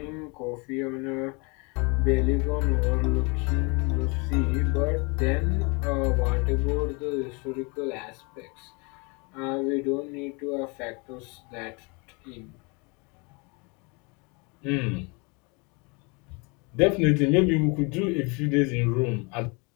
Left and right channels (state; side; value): quieter; right; 30.6 dB